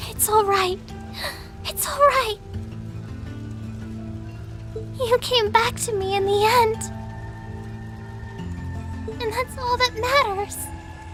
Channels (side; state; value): both; identical; correlation 1.00